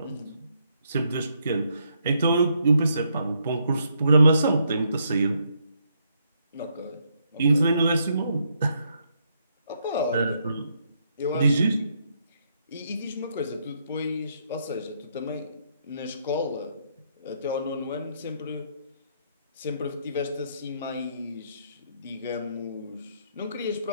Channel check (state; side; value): inverted; both; correlation -0.75